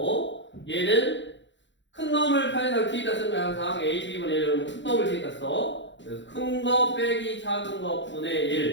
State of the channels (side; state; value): right; late; 0.53 ms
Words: 얘는 큰 놈을 편의상 뒤에다 쓰면 항상 a, b분의 1은 큰 놈을 뒤에다 써. 그래서 큰 거 빼기 작은 거 분의